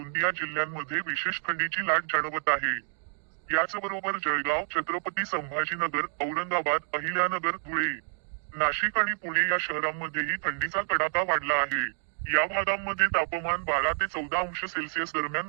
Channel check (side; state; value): left; silent; digital silence